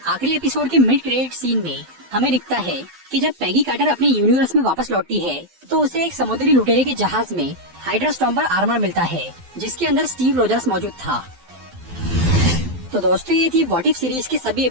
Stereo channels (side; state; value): left; late; 12 ms